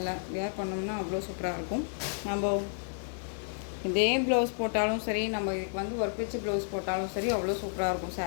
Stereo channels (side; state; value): right; silent; digital silence